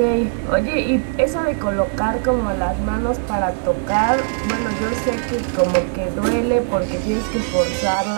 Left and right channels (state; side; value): silent; left; digital silence